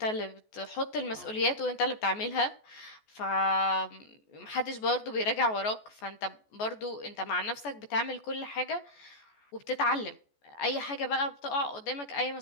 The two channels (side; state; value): right; late; 14 ms